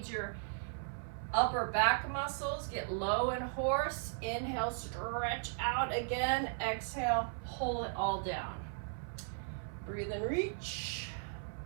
your upper back muscles. Get low in horse. Inhale, stretch out again. Exhale, pull it all down. Breathe and reach.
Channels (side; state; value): left; silent; 53 dB below the other